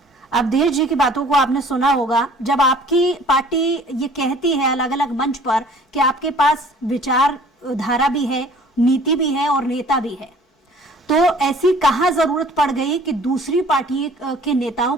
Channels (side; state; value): both; normal; correlation 0.52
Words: अवधेश जी की बातों को आपने सुना होगा। जब आपकी पार्टी ये कहती है अलग अलग मंच पर कि आपके पास विचार धारा भी है, नीति भी है और नेता भी है, तो ऐसी कहां जरूरत पड़ गई कि दूसरी पार्टी के नेताओं